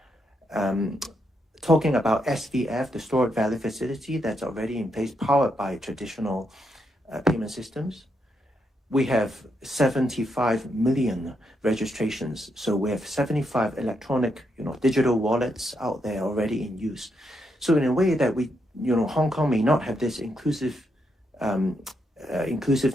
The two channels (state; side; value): normal; both; correlation 0.80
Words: Talking about SVF, the stored value facility that's already in place, powered by traditional payment systems. We have 75 million registrations. So we have 75 electronic, digital wallets out there already in use. So in a way that we, Hong Kong may not have this inclusiveness